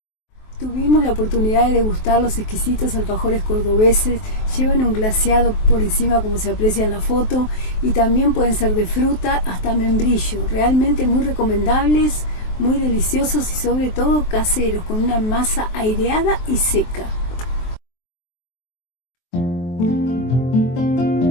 Tuvimos la oportunidad de degustar los exquisitos alfajores cordobeses. Llevan un glaseado por encima, como se aprecia en la foto, y también pueden ser de fruta hasta membrillo. Realmente muy recomendables, muy deliciosos y sobre todo caseros, con una masa aireada y seca.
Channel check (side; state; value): right; late; 23 ms